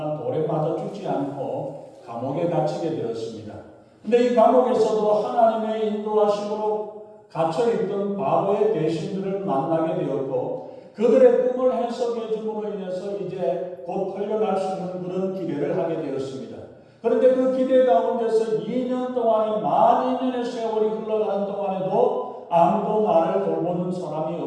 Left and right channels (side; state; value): both; identical; correlation 1.00